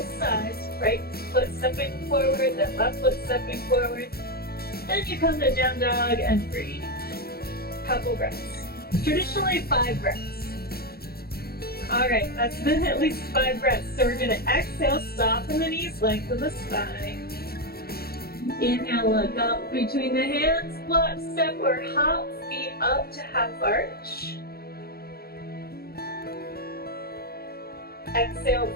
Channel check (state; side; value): late; right; 0.45 ms